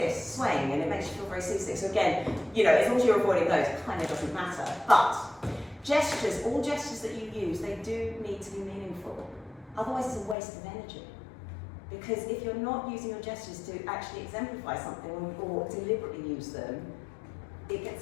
swaying, and it makes you feel very seasick. So again, you know, as long as you're avoiding those, it kind of doesn't matter. But gestures, all gestures that you use, they do need to be meaningful. Otherwise, it's a waste of energy. Because if you're not using your gestures to actually exemplify something or deliberately use them, it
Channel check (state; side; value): drops out; right; at 10.4 s